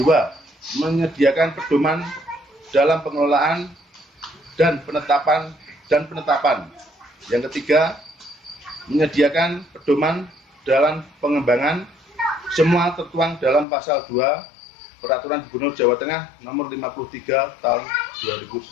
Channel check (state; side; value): drops out; right; at 13.7 s